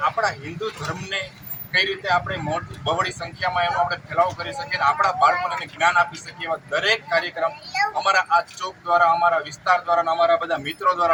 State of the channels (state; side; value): identical; both; correlation 1.00